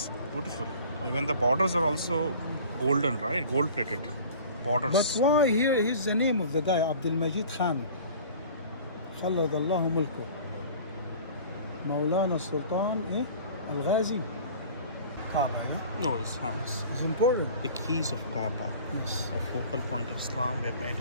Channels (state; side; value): inverted; both; correlation -0.44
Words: beautiful. Even the borders are also golden, right? Gold plated borders. But why here? Here's the name of the guy, Abdul Majid Khan. خلد الله ملكه. مولانا السلطان Al-Ghazi. Kaaba, No, it's important. the keys of Kaaba. Yes. A focal point of Islam were made